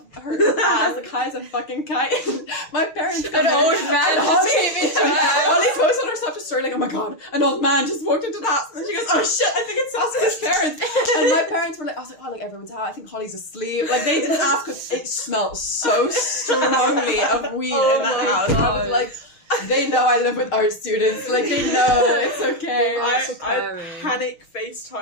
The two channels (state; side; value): late; right; 6.6 ms